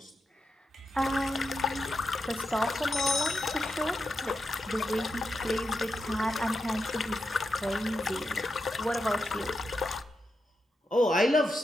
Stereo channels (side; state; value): both; normal; correlation 0.87